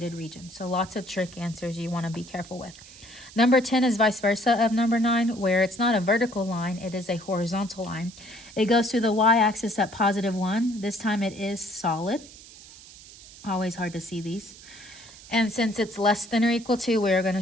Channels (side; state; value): right; noise; hiss, 19 dB below the sound